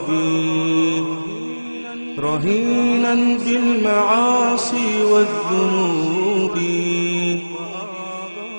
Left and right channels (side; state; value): both; inverted; correlation -1.00